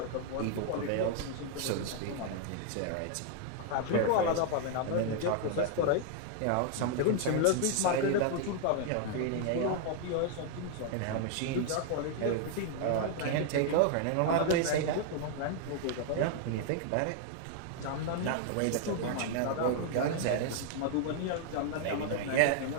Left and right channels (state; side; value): different; both; correlation 0.00